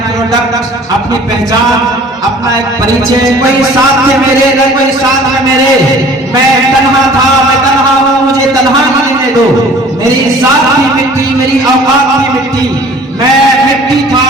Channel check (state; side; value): normal; both; correlation 0.49